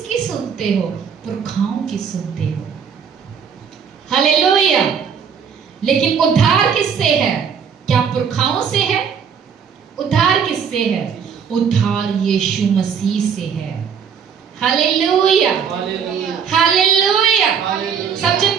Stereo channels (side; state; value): left; quieter; 7.0 dB